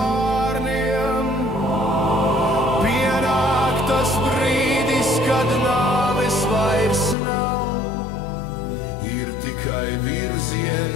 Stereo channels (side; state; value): right; drops out; at 7.2 s